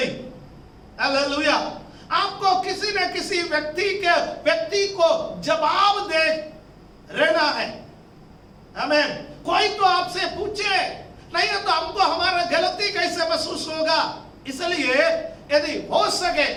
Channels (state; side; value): identical; both; correlation 1.00